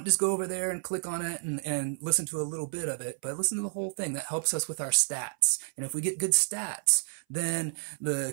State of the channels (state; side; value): silent; left; 58 dB below the other